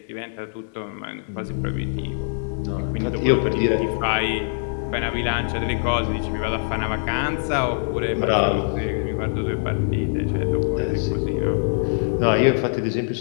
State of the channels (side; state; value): right; silent; digital silence